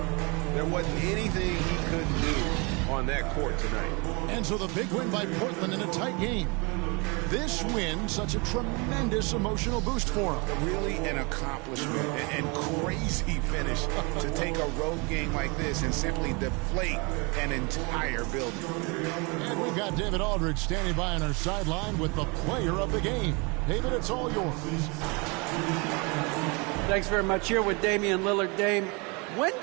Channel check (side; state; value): left; quieter; 29.7 dB